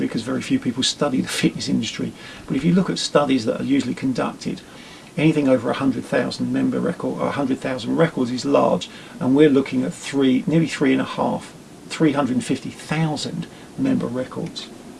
because very few people study the fitness industry, but if you look at studies that are usually conducted, anything over 100,000 member record or 100,000 records is large, and we're looking at nearly 350,000 member records.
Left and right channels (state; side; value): identical; both; correlation 1.00